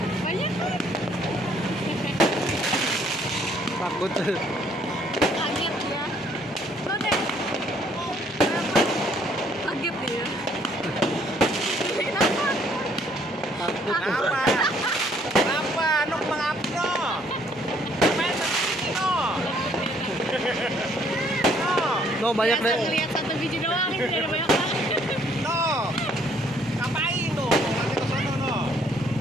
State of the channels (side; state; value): both; normal; correlation 0.64